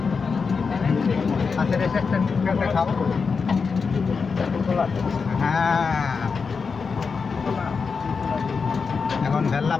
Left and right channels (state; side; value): quieter; right; 5.2 dB